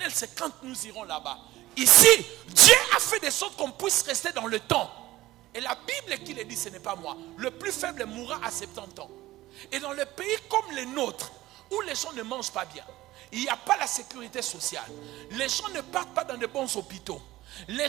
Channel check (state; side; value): quieter; left; 16.9 dB